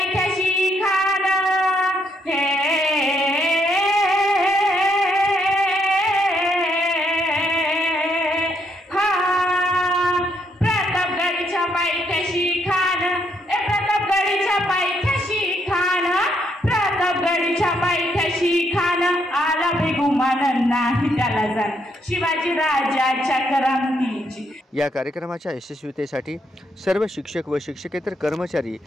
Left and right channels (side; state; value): both; normal; correlation 0.74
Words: खान प्रतापगडच्या पायथ्याशी खान प्रतापगडच्या पायथ्याशी खान प्रतापगडच्या पायथ्याशी खान आला बेगुमान नाही त्याला जाण शिवाजी राजाच्या करामतीची। या कार्यक्रमाच्या यशस्वीतेसाठी सर्व शिक्षक व शिक्षकेतर कर्मचारी